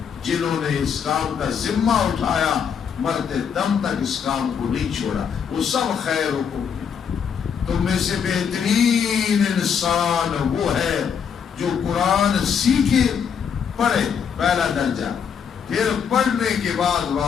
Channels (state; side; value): quieter; right; 7.2 dB